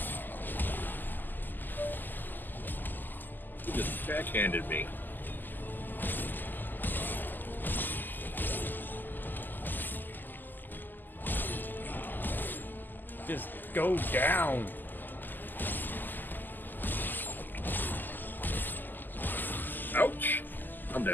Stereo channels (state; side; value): late; right; 0.089 ms